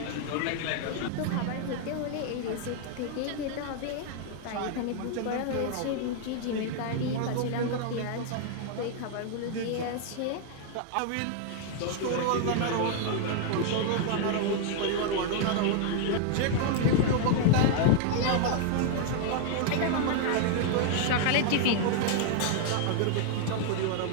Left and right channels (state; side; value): different; both; correlation 0.00